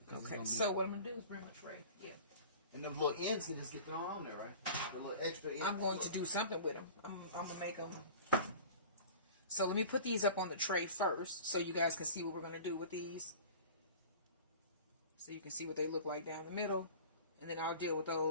Okay, so what I'm going to do is bring my tray. Yeah. And them little ends can just get thrown on there, right? The little extra ends. I'm going to do something with them. I'm going to make them. So let me put these up on the tray first so you guys can see what we're going to do with these. So you can see what they look like down the middle. And then I'll deal with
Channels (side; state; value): both; inverted; correlation -0.41